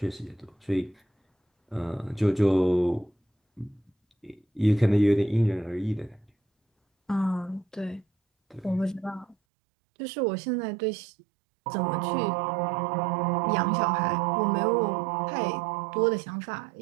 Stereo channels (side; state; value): left; drops out; at 9.3 s